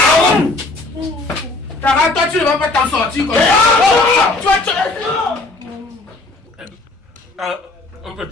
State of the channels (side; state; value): right; quieter; 3.1 dB